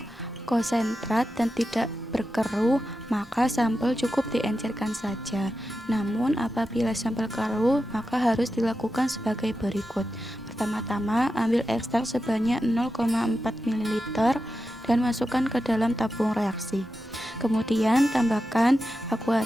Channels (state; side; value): normal; both; correlation 0.90